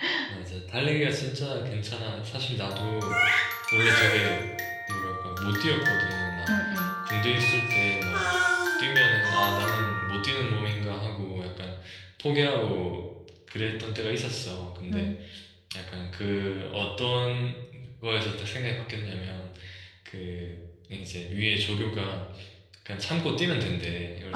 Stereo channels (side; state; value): both; identical; correlation 1.00